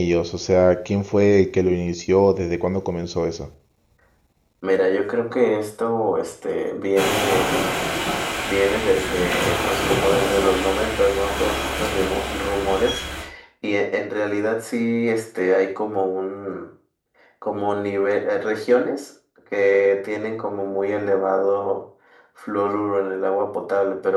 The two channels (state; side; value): identical; both; correlation 1.00